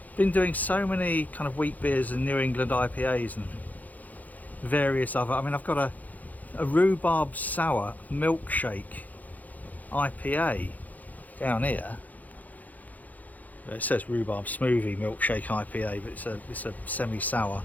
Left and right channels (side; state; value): right; late; 0.080 ms